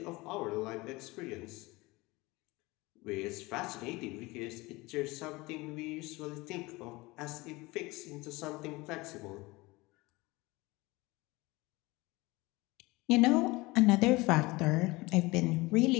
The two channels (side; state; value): right; quieter; 22.4 dB